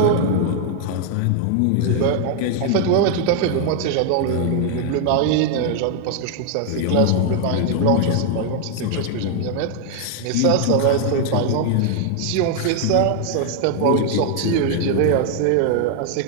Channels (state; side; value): different; both; correlation 0.00